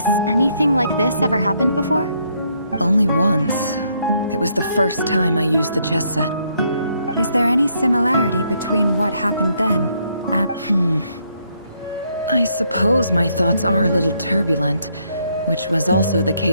anything like this ever happened before? Only once. It was the first time I used the chess set. Is there any similarity between what happened then and... I suppose my thoughts are a little turbulent, which was also the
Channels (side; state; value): both; inverted; correlation -0.72